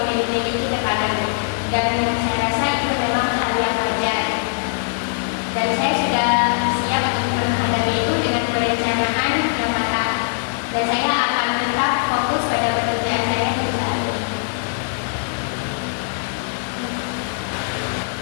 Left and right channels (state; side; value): silent; right; digital silence